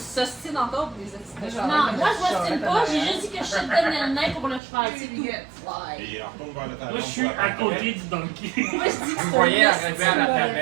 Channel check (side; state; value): left; drops out; at 4.6 s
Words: encore pour les accidents. Non, moi, je m'ostine pas, j'ai juste dit que je shotgunnais le nain pour le cheval, c'est tout. Et on retourne vers le talon. Moi, je suis à côté du donkey. Moi, je dis que Vous c'est voyez un arriver à la esti,